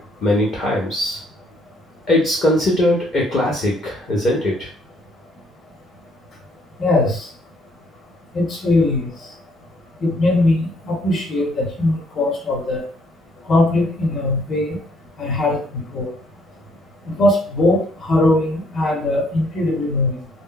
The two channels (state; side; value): normal; both; correlation 0.67